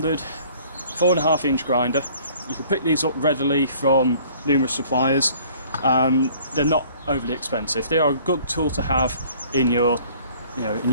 4.5 inch grinder. You can pick these up readily from numerous suppliers. They're not overly expensive. They are a good tool to have in your, in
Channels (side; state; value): both; inverted; correlation -0.54